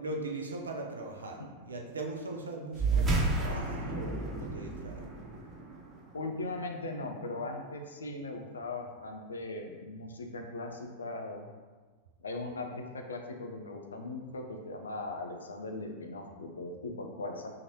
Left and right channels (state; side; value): normal; both; correlation 0.00